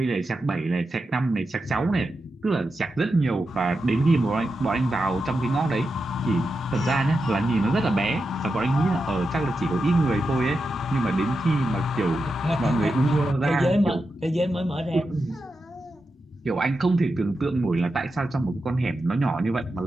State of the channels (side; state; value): both; normal; correlation 0.89